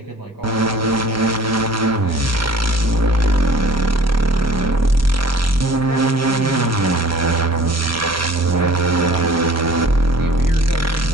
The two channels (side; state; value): both; normal; correlation 0.50